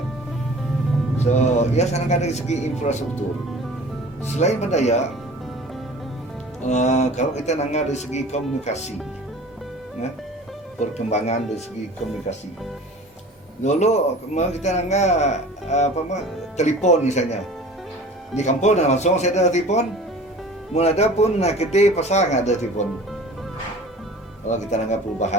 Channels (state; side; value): normal; both; correlation 0.43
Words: So ya sana dari segi infrastruktur. Selain berdaya, kalau kita nangga dari segi komunikasi, perkembangan dari segi komunikasi. Dulu kita telepon misalnya di kampung langsung saya ada telepon, mau ada pun kita pasang ada telepon. Kalau kita nggak